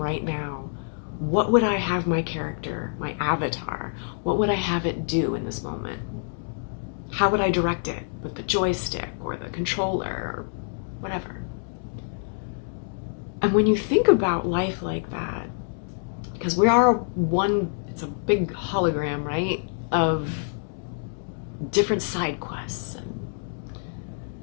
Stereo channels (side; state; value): right; silent; digital silence